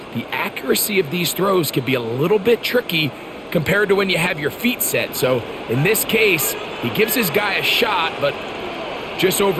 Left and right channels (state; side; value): identical; both; correlation 1.00